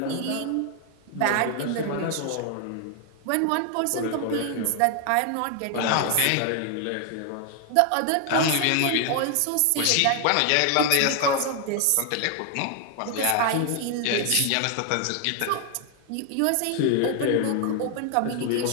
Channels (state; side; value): different; both; correlation 0.00